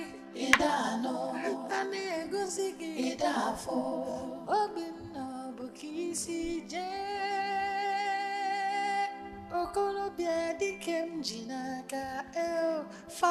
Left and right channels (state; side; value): identical; both; correlation 1.00